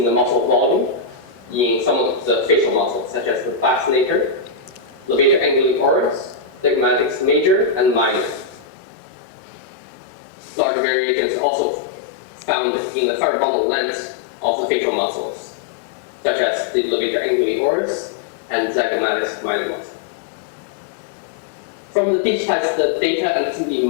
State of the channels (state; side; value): drops out; right; at 8.7 s